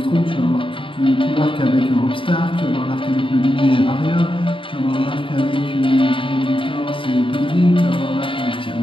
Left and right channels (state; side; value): late; right; 0.25 ms